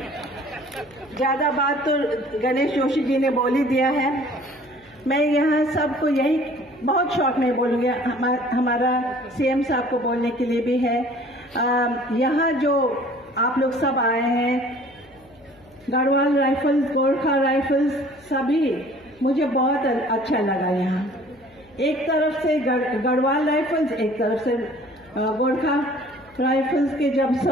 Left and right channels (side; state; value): left; noise; hum, 29 dB below the sound